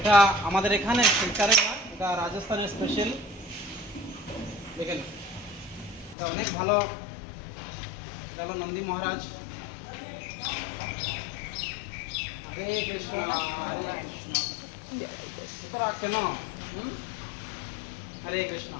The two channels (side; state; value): right; drops out; at 6.2 s